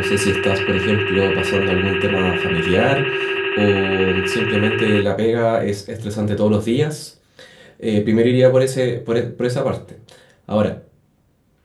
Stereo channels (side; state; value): both; identical; correlation 1.00